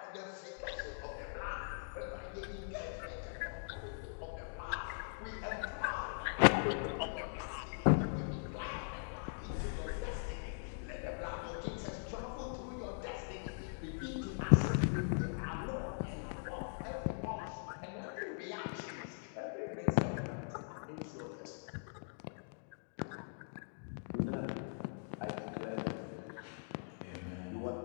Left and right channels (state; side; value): silent; right; digital silence